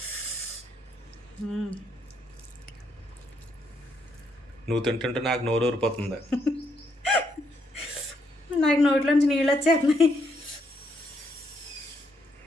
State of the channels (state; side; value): normal; both; correlation 0.75